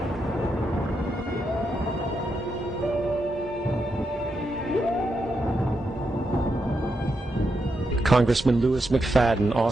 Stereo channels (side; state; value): both; normal; correlation 0.84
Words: Congressman Louis McFadden